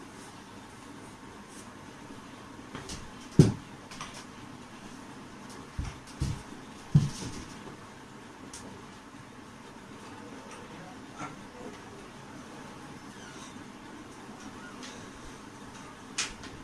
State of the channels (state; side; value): identical; both; correlation 1.00